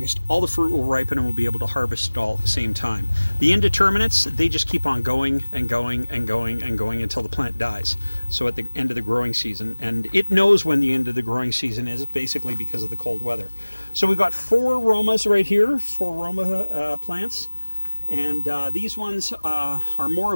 all the fruit will ripen and we'll be able to harvest it all at the same time. The indeterminates, they just keep on going and going and going and going until the plant dies. So at the end of the growing season, and it knows when the end of the growing season is, basically because of the cold weather. So we've got 4 Romas right here, 4 Roma plants. And these ones are more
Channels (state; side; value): inverted; both; correlation -1.00